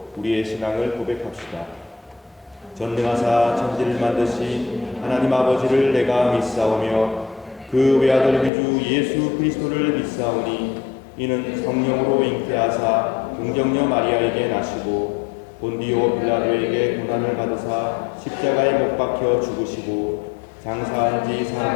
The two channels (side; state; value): right; drops out; at 8.5 s